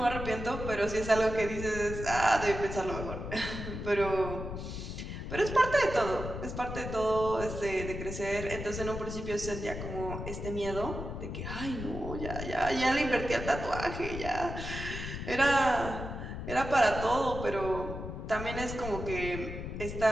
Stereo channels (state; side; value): noise; left; rumble, 7 dB below the sound